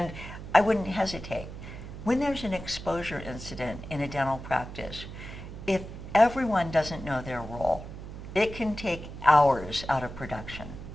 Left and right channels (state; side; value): noise; right; hum, 11 dB below the sound